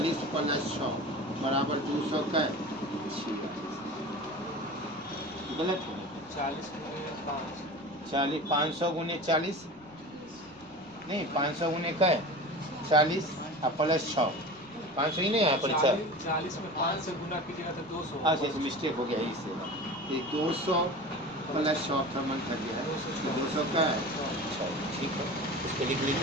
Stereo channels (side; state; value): left; noise; rumble, 27 dB below the sound